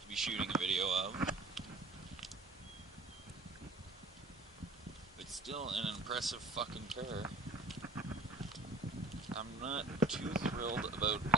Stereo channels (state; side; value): normal; both; correlation 0.47